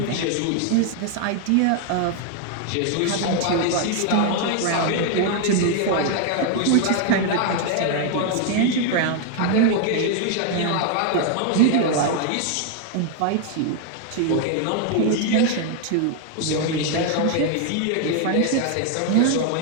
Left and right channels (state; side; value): different; both; correlation 0.00